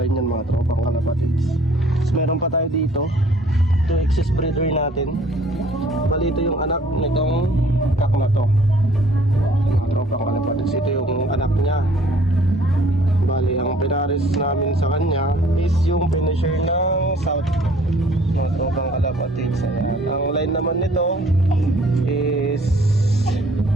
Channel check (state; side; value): normal; both; correlation 0.57